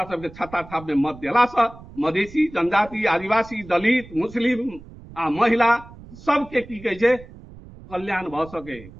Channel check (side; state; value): right; noise; rumble, 18 dB below the sound